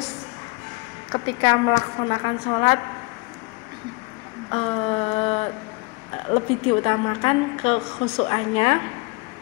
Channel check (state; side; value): quieter; right; 27.5 dB